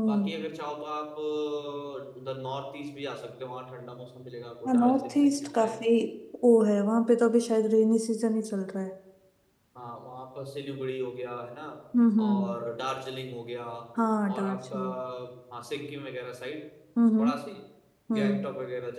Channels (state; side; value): identical; both; correlation 1.00